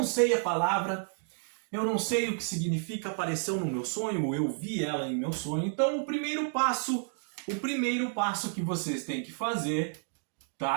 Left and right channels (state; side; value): silent; left; 57 dB below the other